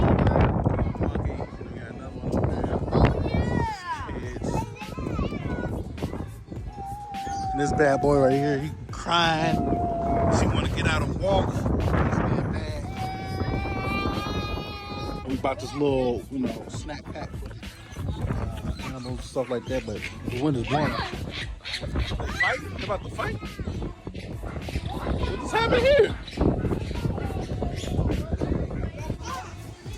Monkey. We got another one over there. Kids. And this bad boy right here, he crying. She want to get out and walk. He's being bad. We bought this little, snack pack. Animals, stuff like that, but the wind is blowing. Fight? They about to fight? What's happening here?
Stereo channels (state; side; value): identical; both; correlation 1.00